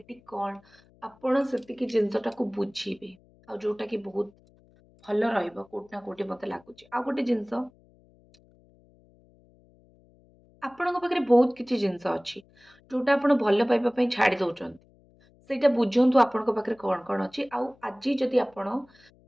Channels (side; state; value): left; noise; hum, 30 dB below the sound